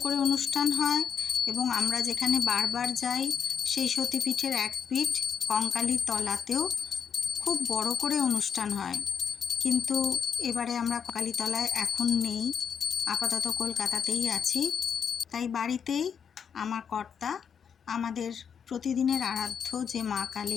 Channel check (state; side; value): quieter; right; 7.3 dB